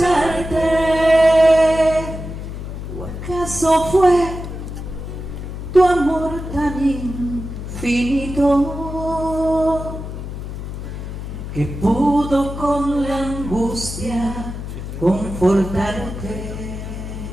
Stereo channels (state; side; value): noise; left; hum, 8 dB below the sound